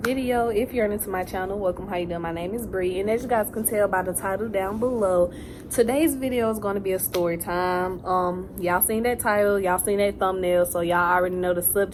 If you're new to my channel, welcome. How you doing? My name is Bree, and as you guys can tell by the title down below, today's video is going to be a story time. Y'all seen that title, y'all seen that thumbnail, so y'all already know the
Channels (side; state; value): both; identical; correlation 1.00